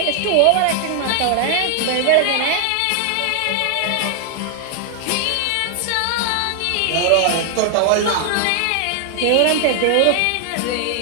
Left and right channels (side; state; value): both; different; correlation 0.00